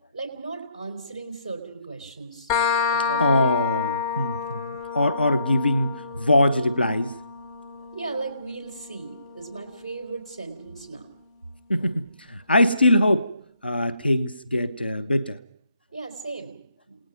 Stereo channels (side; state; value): both; inverted; correlation -0.70